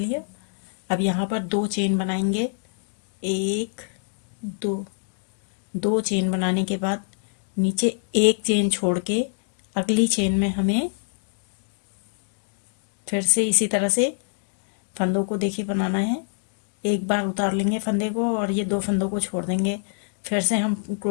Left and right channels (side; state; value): right; silent; digital silence